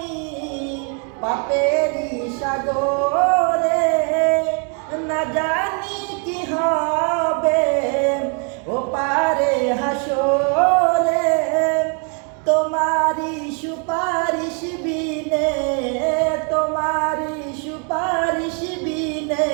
পাপেরি সাগরে, না জানি কি হবে ও পারে হাসরে। তোমারি সুপারিশ বিনে, তোমারি সুপারিশ বিনে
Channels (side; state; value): left; quieter; 39.8 dB